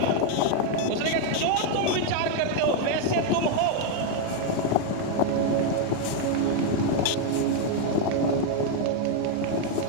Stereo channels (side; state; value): both; different; correlation 0.01